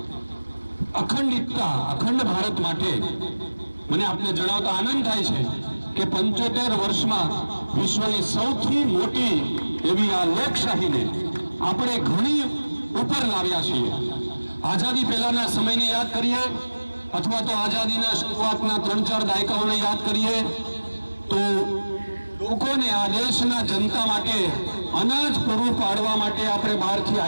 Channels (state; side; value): inverted; both; correlation -1.00